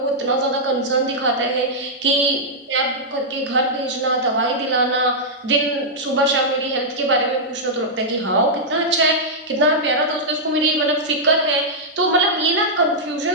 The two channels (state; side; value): normal; both; correlation -0.08